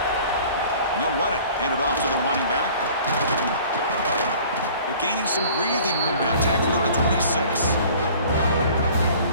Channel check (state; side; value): inverted; both; correlation -0.49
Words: And they'll run it. Hand it off to the running back. They're gaining some breathing room now. Tackled at the 26.